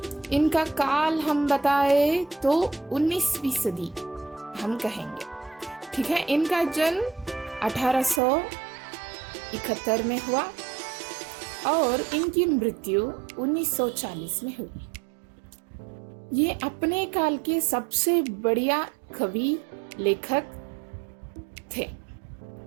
इनका काल हम बताए तो 19वीं सदी हम कहेंगे, ठीक है। इनका जन्म 1871 में हुआ और इनकी मृत्यु 1940 में हुई। ये अपने काल के सबसे बढ़िया कवि लेखक थे।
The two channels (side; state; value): left; drops out; at 8.2 s